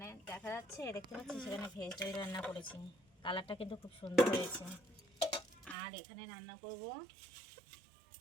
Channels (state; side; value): drops out; left; at 5.8 s